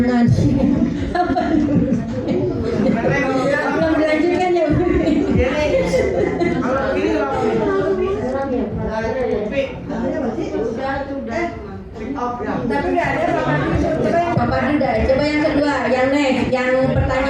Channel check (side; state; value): both; identical; correlation 1.00